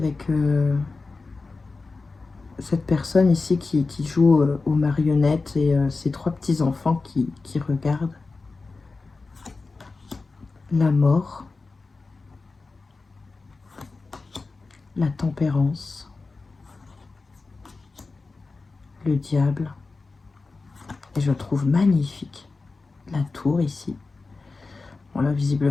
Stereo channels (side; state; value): right; quieter; 3.9 dB